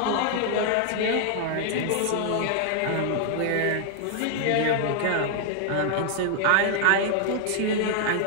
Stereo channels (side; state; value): both; different; correlation 0.00